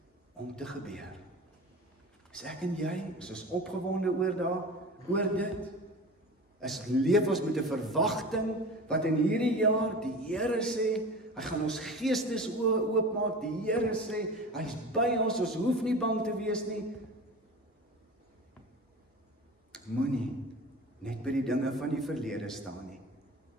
om te gebeur. Is ek en jy, is ons opgewonde oor dit? Leef ons met 'n verwagting, wat in hierdie jaar die Here sê, hy gaan ons geestes oopmaak, die Here sê, hy is by ons hoef nie bang te wees nie. Moenie net by die dinge van die verlede staan nie.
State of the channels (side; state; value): both; normal; correlation 0.34